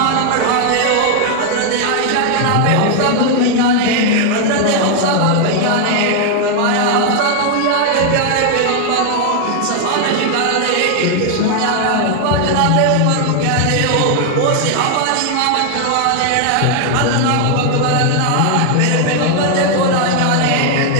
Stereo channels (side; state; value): both; different; correlation 0.00